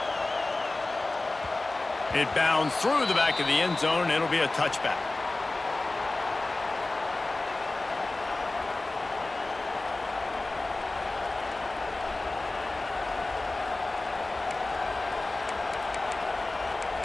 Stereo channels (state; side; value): quieter; right; 3.0 dB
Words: It bounds through the back of the end zone, and it'll be a touchback.